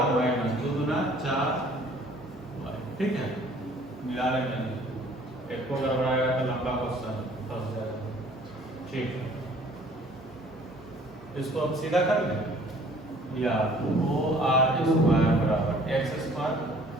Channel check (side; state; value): both; normal; correlation 0.54